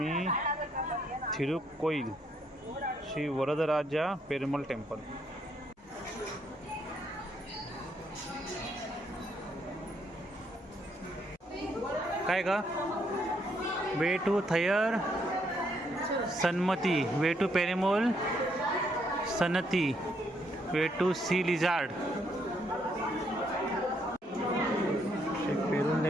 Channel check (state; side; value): normal; both; correlation 0.73